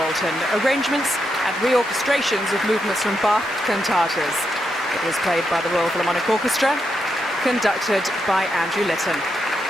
Arrangements and reorchestrations of movements from Bach cantatas. It was played by the Royal Philharmonic Orchestra, conducted by Andrew Litton.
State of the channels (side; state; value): both; normal; correlation 0.83